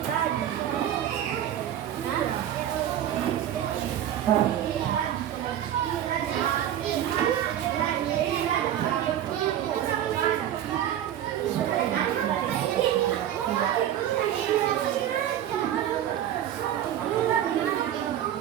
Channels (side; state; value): left; quieter; 11.1 dB